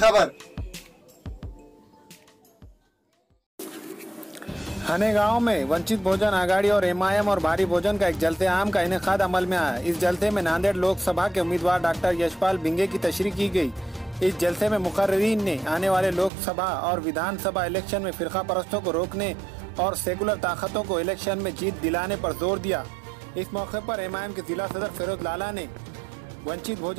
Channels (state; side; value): drops out; left; at 16.3 s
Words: हने गांव में वंचित बहुजन आघाड़ी और एमआईएम और भारी भोजन का एक जलते आम का इनेकाद अमल में आया। इस जलसे में नांदेड़ लोकसभा के उम्मीदवार डॉक्टर यशपाल भिंगे की तशरीह की गई। इस जलसे में मुकर्रीरीन ने आने वाले लोकसभा और विधानसभा इलेक्शन में फिरका परस्तों को रोकने और सेकुलर ताकतों को इलेक्शन में जीत दिलाने पर जोर दिया। इस मौके पर एमआईएम के जिला सदर फिरोज लाला ने वंचित